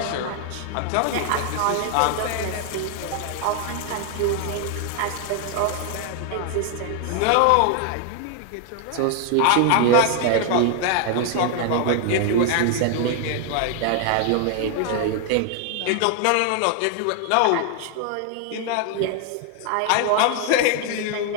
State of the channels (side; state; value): both; different; correlation 0.00